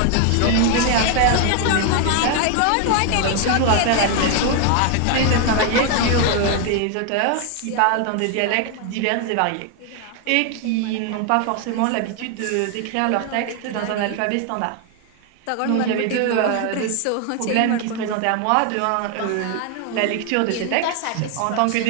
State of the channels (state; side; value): different; both; correlation 0.01